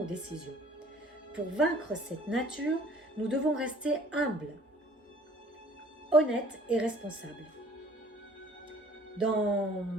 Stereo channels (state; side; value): normal; both; correlation 0.53